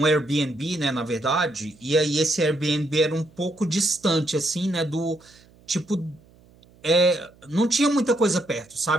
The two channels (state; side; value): noise; right; hum, 28 dB below the sound